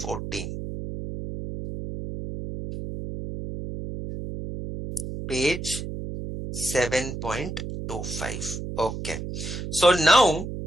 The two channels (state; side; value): noise; right; hum, 7 dB below the sound